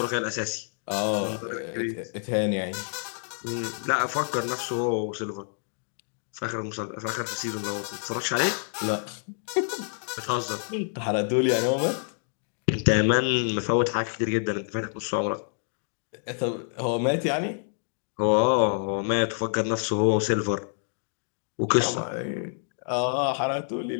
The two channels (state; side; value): silent; right; digital silence